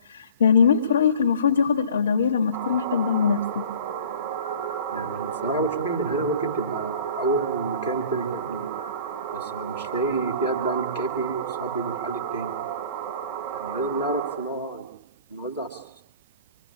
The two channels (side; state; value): both; inverted; correlation -0.46